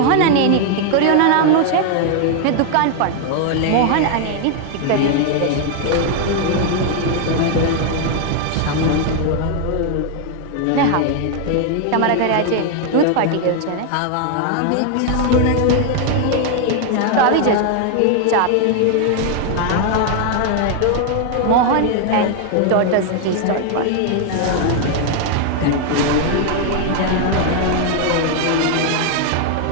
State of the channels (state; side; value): different; both; correlation 0.00